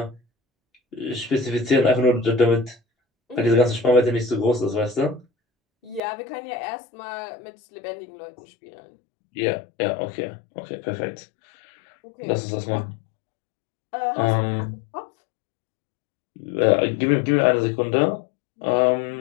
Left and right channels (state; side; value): drops out; right; at 6.0 s